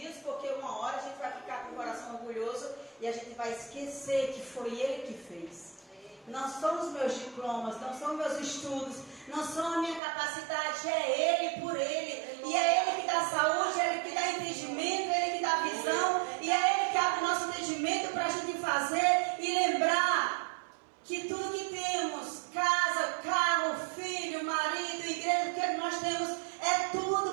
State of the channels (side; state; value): left; drops out; at 10.0 s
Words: porque uma hora a gente vai ficar com o coração orgulhoso, e a gente vai esquecer que foi ele que fez. Não são os meus diplomas, não são meus estudos, não são a minha capacidade, é Ele por Ele. E é Ele que dá saúde, é Ele que dá entendimento, é Ele que dá visão, e é Ele que abre o nosso entendimento para a gente fazer e lembrar que tudo que temos, casa, carro, filho, marido, igreja, o que nós temos, é